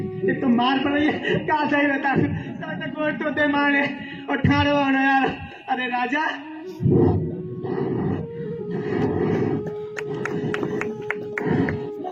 ये तो मार पड़ रही है, कहा सही बता तक गोर तो दे मारे और ठाड़ो होना यार। अरे राजा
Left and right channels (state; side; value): identical; both; correlation 1.00